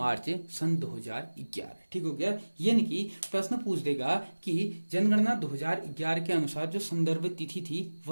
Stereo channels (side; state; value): both; inverted; correlation -1.00